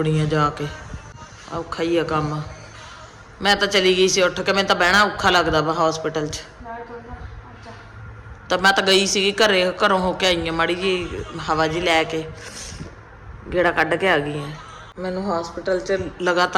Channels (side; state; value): both; identical; correlation 1.00